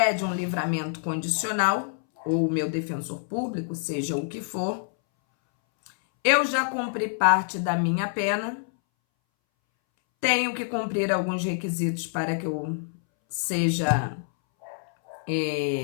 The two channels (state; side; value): silent; right; 61 dB below the other